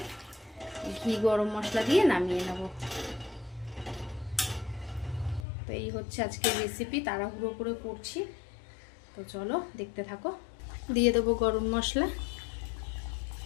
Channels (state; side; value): drops out; right; at 5.5 s